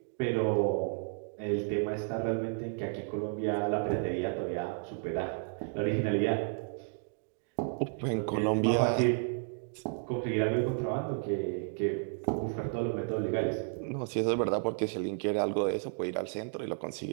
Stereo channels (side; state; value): left; silent; 56 dB below the other